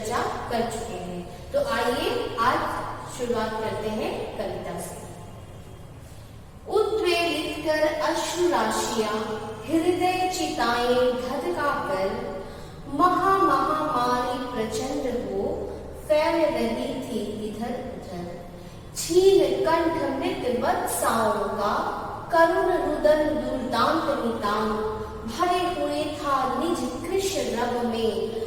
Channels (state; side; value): identical; both; correlation 1.00